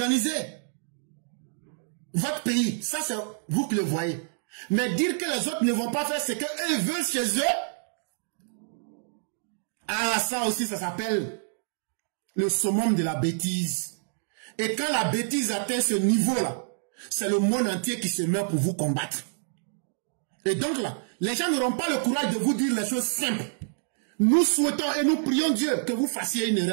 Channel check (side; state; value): left; silent; digital silence